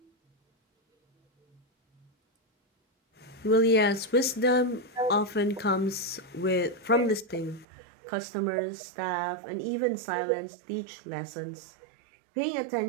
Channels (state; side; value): drops out; left; at 7.7 s